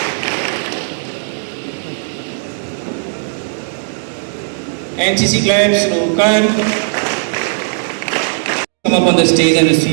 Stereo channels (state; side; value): silent; left; digital silence